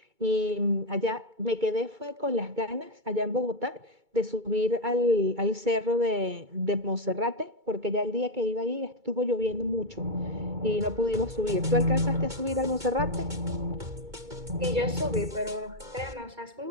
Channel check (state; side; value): late; left; 2.2 ms